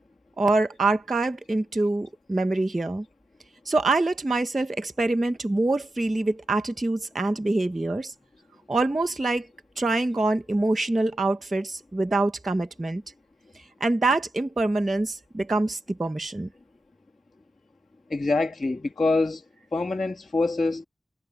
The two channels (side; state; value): both; normal; correlation 0.89